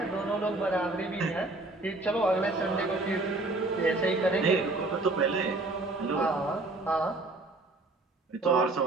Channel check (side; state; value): left; quieter; 3.0 dB